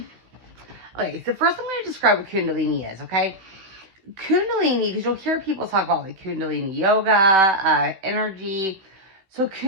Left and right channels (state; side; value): late; left; 16 ms